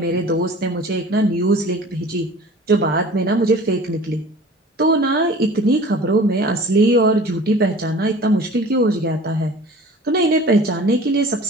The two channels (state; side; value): normal; both; correlation 0.43